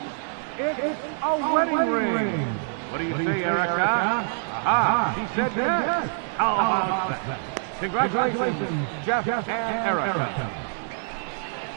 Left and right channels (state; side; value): silent; left; 61 dB below the other